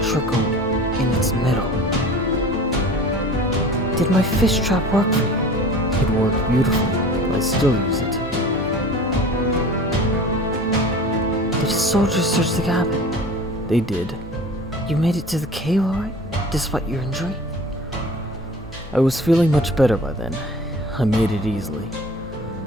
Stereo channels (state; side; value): normal; both; correlation 0.41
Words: trickle in its middle. "Did my fish trap work for you?" "It worked beautifully. I still use it." "Did the soldiers search the cabin?" "They did." "You made it to the cave all right, despite your injury?" "I was feeling much better by then. I made it easily."